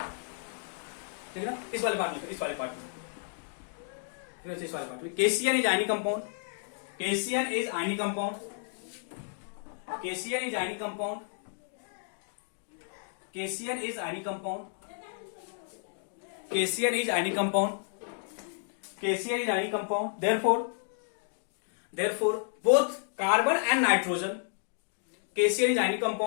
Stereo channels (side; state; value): right; silent; digital silence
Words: ठीक है ना? इस वाले पार्ट में, इस वाले पार्ट में, ठीक है? इस वाले पार्ट में KCN is ionic compound, KCN is ionic compound, KCN is ionic compound, KCN is ionic compound, KCN is ionic compound, KCN is ionic compound. therefore both carbon and nitrogen, KCN is ionic